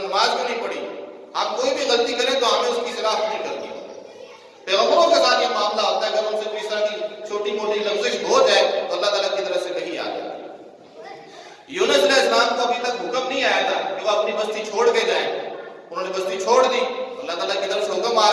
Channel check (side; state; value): both; identical; correlation 1.00